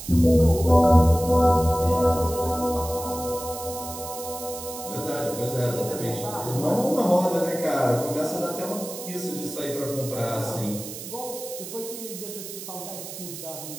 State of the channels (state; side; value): noise; right; hiss, 11 dB below the sound